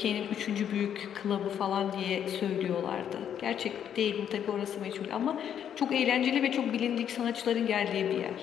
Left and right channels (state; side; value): quieter; right; 9.1 dB